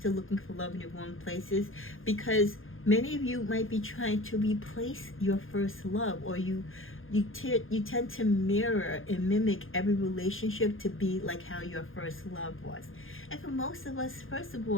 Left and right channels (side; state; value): right; late; 0.59 ms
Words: looking for love in the wrong places, because many of you might be trying to replace your first love, or you tend to mirror and mimic every relationship to be like how your first love was. And for most of us, first of